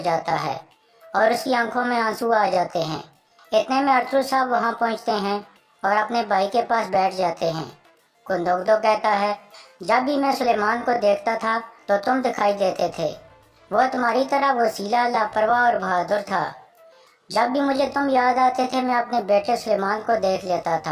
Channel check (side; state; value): both; identical; correlation 1.00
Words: जाता है और उसकी आंखों में आंसू आ जाते हैं। इतने में अरतुल साहब वहां पहुंचते हैं और अपने भाई के पास बैठ जाते हैं। गुंदोगदो कहता है, जब भी मैं सुलेमान को देखता था तो तुम दिखाई देते थे। वो तुम्हारी तरह वसीला, लापरवाह और बहादुर था। जब भी मुझे तुम याद आते थे मैं अपने बेटे सुलेमान को देख लेता